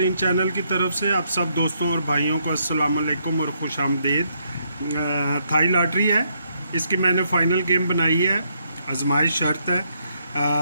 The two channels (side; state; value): both; inverted; correlation -0.75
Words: channel की तरफ से आप सब दोस्तों और भाइयों को अस्सलाम वालेकुम और खुश आमदीद। थाई लॉटरी है, इसकी मैंने फ़ाइनल गेम बनाई है। आजमाइश शर्त है